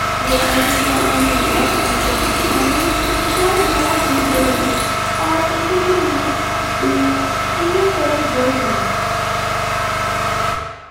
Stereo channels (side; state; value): both; identical; correlation 1.00